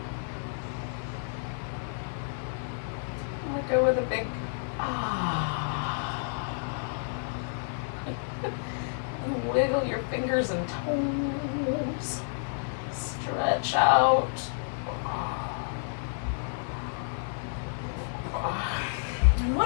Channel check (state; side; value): silent; right; digital silence